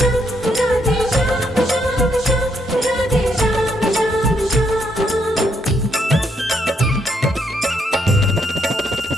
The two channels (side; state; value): both; normal; correlation 0.75